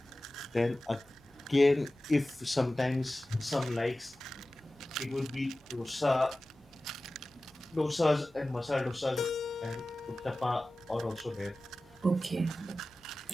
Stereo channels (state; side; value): normal; both; correlation 0.96